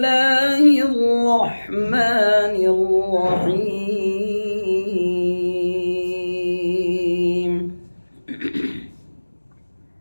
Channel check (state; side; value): inverted; both; correlation -1.00